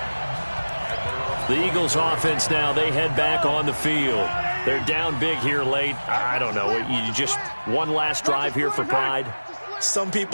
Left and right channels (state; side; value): inverted; both; correlation -1.00